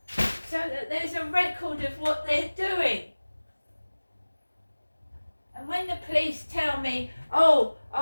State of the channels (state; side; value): inverted; both; correlation -1.00